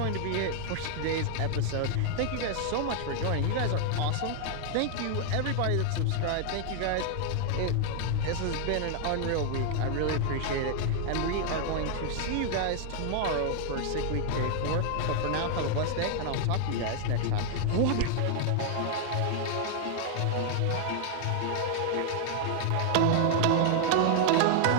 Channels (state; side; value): different; both; correlation 0.00